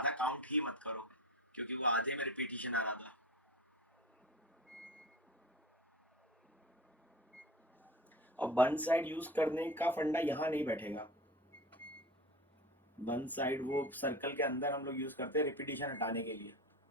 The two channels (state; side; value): normal; both; correlation 0.32